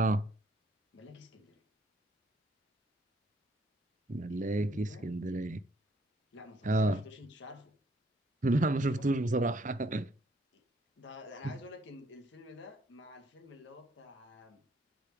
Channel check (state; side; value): normal; both; correlation 0.67